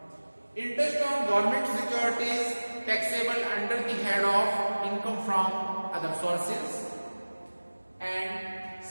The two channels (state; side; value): inverted; both; correlation -1.00